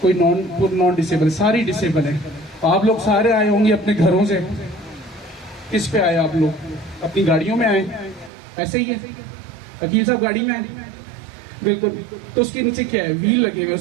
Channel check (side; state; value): left; drops out; at 8.3 s